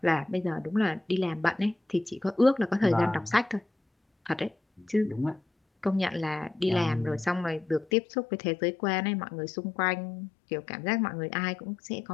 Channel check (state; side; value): drops out; right; at 7.9 s